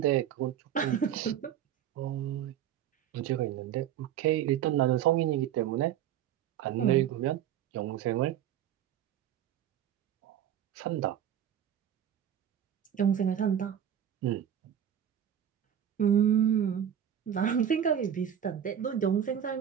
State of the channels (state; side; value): quieter; left; 9.8 dB